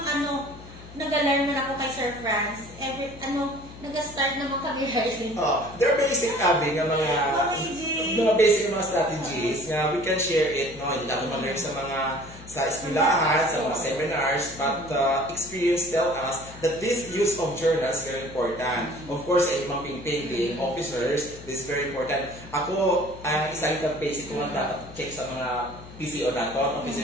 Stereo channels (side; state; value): left; noise; hum, 17 dB below the sound